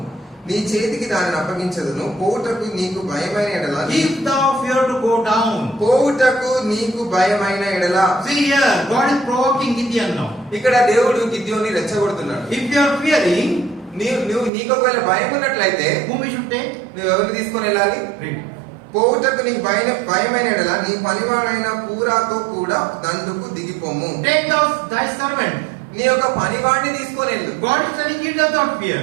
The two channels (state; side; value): drops out; left; at 14.5 s